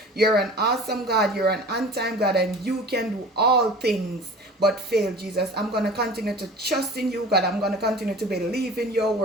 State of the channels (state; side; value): normal; both; correlation 0.41